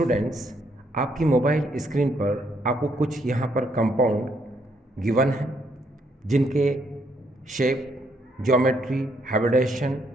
आपकी मोबाइल स्क्रीन पर आपको कुछ यहाँ पर कंपाउंड गिवन है जिनके शेप, ज्योमेट्री, हाइब्रिडाइजेशन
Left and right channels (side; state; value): both; normal; correlation 0.72